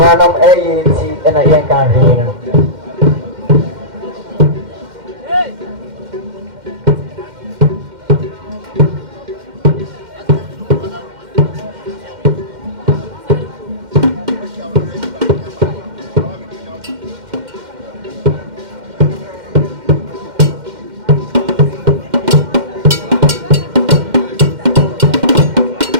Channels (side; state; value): left; late; 2.1 ms